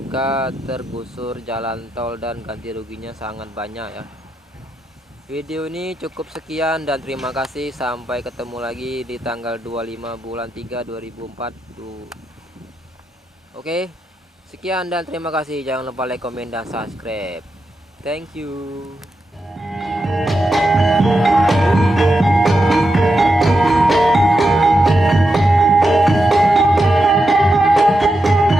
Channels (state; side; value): normal; both; correlation 0.87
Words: tergusur jalan tol dan ganti ruginya sangat banyak ya. Video ini cukup sekian dan terima kasih. Sampai ketemu lagi di tanggal 25 bulan 3 2004. Oke, sekian dan terima kasih. Jangan lupa like, komen, dan subscribe. Thank you.